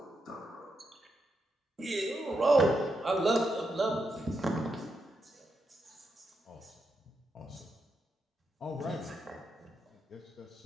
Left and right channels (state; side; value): normal; both; correlation 0.84